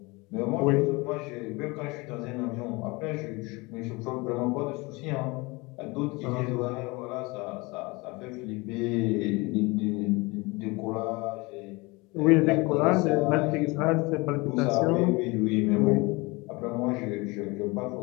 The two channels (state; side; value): quieter; right; 25.1 dB